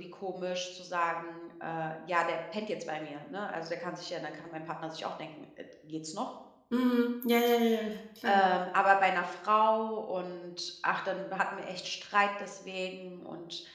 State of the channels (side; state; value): both; identical; correlation 1.00